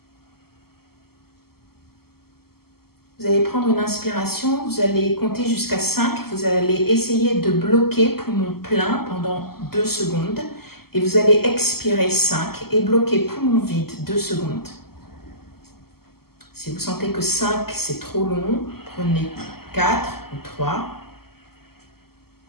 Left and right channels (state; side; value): late; right; 0.95 ms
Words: Vous allez prendre une inspiration, vous allez compter jusqu'à 5, vous allez essayer de bloquer poumon plein pendant 2 secondes et vous allez expirer 5 et bloquer poumon vide 2 secondes. Si vous sentez que 5 c'est trop long, prenez 4 ou 3